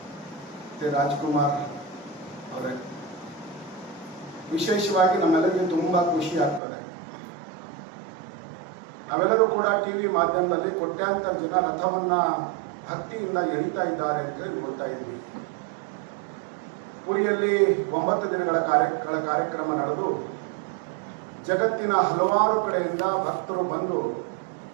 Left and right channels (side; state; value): left; drops out; at 6.6 s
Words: ಮತ್ತು ರಾಜ್ಕುಮಾರ್ ಅವರೇ, ವಿಶೇಷವಾಗಿ ನಮ್ಮೆಲ್ಲರಿಗೆ ತುಂಬ ಖುಷಿ ಆಗ್ತದೆ. ನಾವೆಲ್ಲರೂ ಕೂಡ ಟಿವಿ ಮಾಧ್ಯಮದಲ್ಲಿ ಕೋಟ್ಯಾಂತರ ಜನ ರಥವನ್ನ ಭಕ್ತಿಯಿಂದ ಎಳಿತಾ ಇದ್ದಾರೆ ಅಂತ ನೋಡ್ತಾ ಇದ್ವಿ. ಪುರಿಯಲ್ಲಿ 9 ದಿನಗಳ ಕಾರ್ಯಕ್ರಮ ನಡೆದು ಜಗತ್ತಿನ ಹಲವಾರು ಕಡೆಯಿಂದ ಭಕ್ತರು ಬಂದು